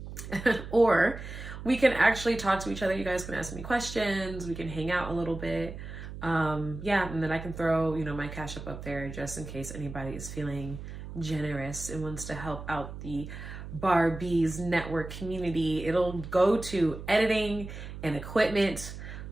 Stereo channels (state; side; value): noise; right; hum, 10 dB below the sound